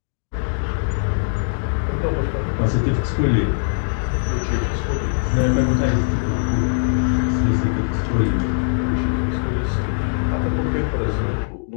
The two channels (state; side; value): silent; right; digital silence